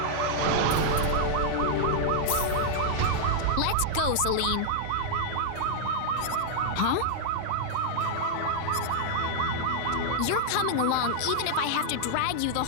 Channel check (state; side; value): different; both; correlation -0.01